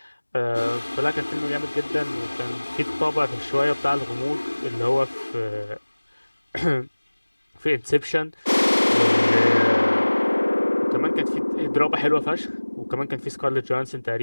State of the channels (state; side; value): inverted; both; correlation -1.00